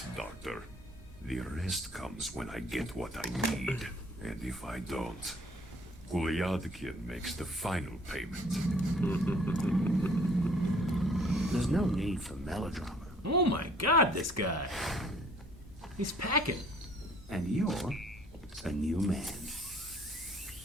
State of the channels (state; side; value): normal; both; correlation 0.58